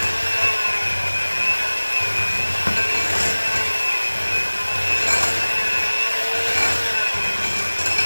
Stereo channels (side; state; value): both; inverted; correlation -1.00